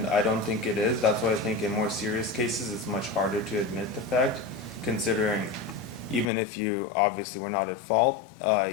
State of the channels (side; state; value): right; drops out; at 6.3 s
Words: I don't think it is. That's why I think in more serious cases it's much harder to admit the fact, considering even if you obviously were not at fault,